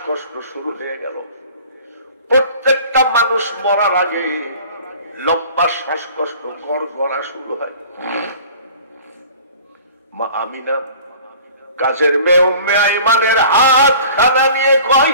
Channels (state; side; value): inverted; both; correlation -0.46